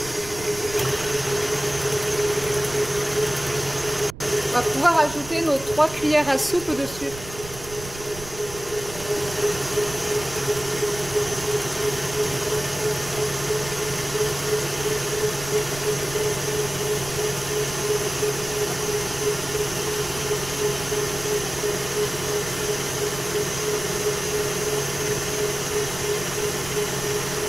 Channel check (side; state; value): right; noise; rumble, 14 dB below the sound